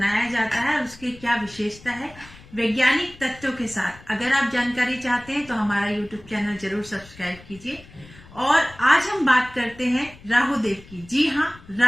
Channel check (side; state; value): left; noise; rumble, 21 dB below the sound